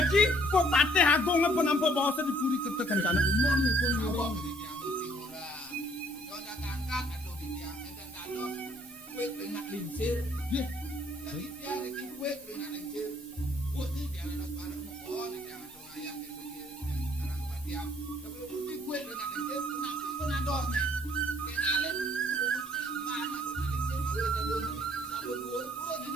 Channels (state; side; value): normal; both; correlation 0.62